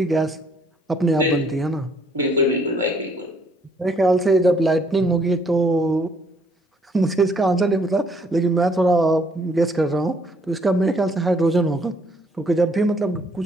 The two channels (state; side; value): normal; both; correlation 0.65